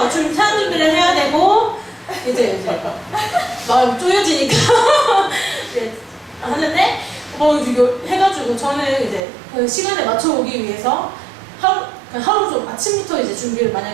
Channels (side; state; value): left; drops out; at 9.2 s